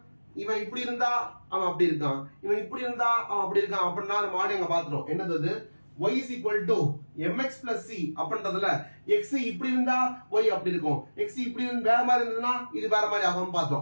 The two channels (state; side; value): inverted; both; correlation -1.00